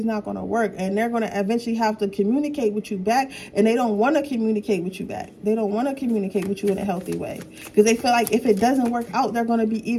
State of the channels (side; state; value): both; identical; correlation 1.00